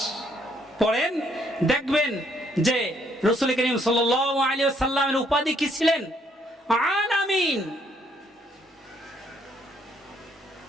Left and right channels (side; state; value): both; normal; correlation 0.69